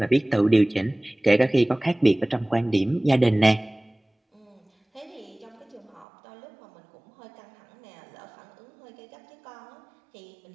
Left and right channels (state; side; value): drops out; left; at 6.1 s